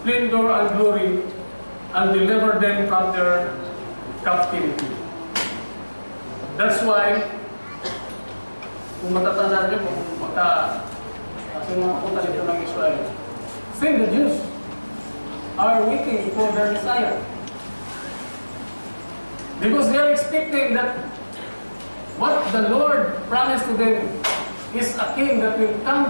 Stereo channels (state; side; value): inverted; both; correlation -1.00